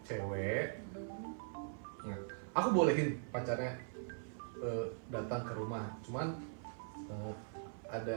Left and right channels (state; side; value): silent; left; 50 dB below the other